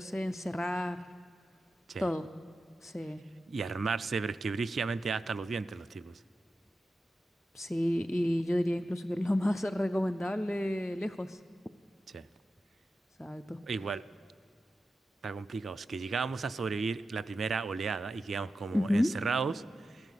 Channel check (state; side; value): normal; both; correlation 0.92